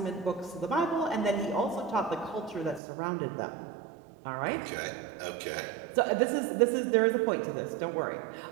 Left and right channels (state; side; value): drops out; left; at 2.8 s